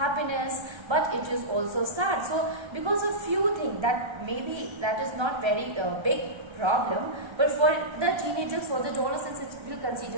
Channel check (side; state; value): left; late; 1.3 ms